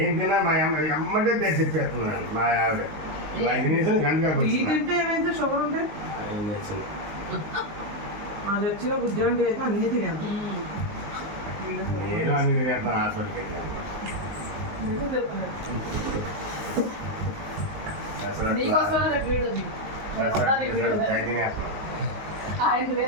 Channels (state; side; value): late; left; 19 ms